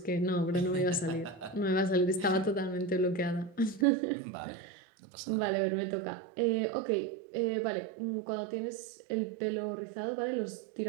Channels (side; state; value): left; drops out; at 3.9 s